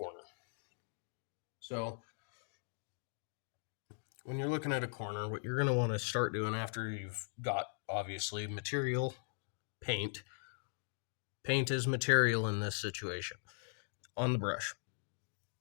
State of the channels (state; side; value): silent; right; digital silence